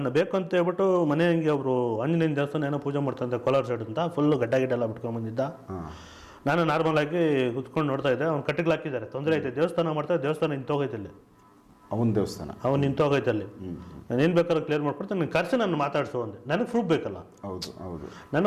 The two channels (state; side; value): identical; both; correlation 1.00